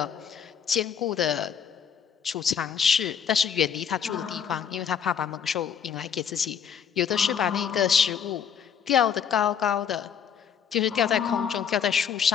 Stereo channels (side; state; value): right; quieter; 7.8 dB